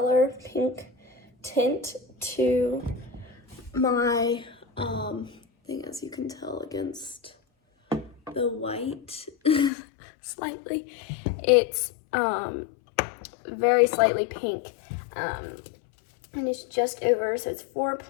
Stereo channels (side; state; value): right; drops out; at 9.7 s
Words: tint to my thing, as you can tell against the white slightly. It's very slightly pink, and it's just over, so it's